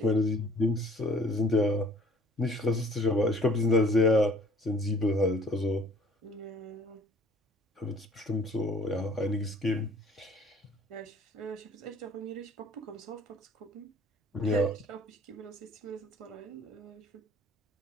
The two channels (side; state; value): both; normal; correlation 0.53